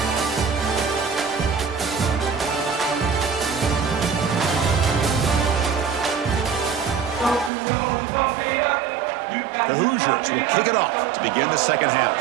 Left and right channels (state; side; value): drops out; left; at 7.5 s